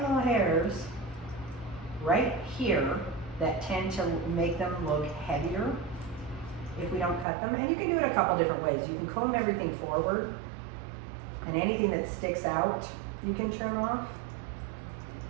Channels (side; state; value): left; drops out; at 7.2 s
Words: little hairs right here that tend to make them look heavier if we don't cut them. And you can do it a couple different ways. You can comb everything forward, and anything that sticks out you can trim off.